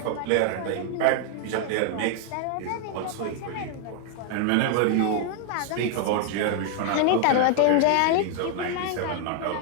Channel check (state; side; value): different; both; correlation 0.00